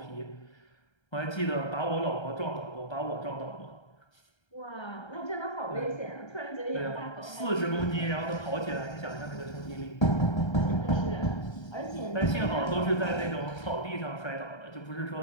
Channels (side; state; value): right; late; 1.3 ms